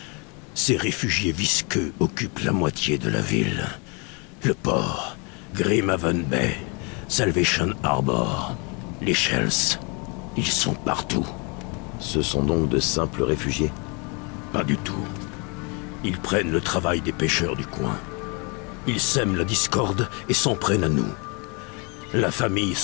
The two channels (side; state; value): right; quieter; 32.3 dB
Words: ces réfugiés visqueux occupent la moitié de la ville. Le port, Grimhaven Bay, Salvation Harbor, les Shells, ils sont partout. Ce sont donc de simples réfugiés? Pas du tout. Ils prennent le travail des pêcheurs du coin. Ils sèment la discorde et s'en prennent à nous. La famille